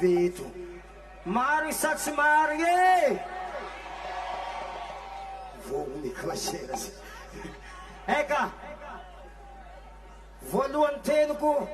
eto. Maro isa tsy maro e. Vogny klasera. Eka. Voalohany teniko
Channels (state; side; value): identical; both; correlation 1.00